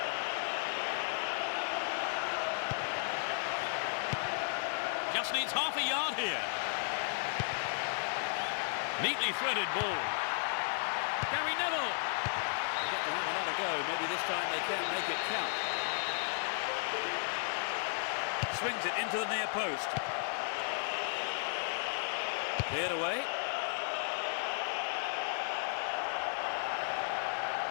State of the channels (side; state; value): right; silent; digital silence